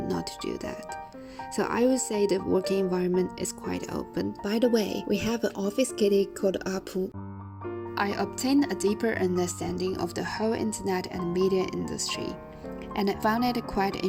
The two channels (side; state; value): both; identical; correlation 1.00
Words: to do that. So I would say the working environment is quite open. By the way, we have an office kitty called Apu. I obtained a deeper understanding of the whole internet and media industry, and I found it quite